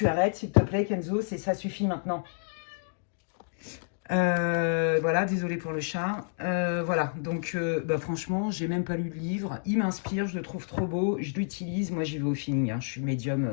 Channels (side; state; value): right; silent; digital silence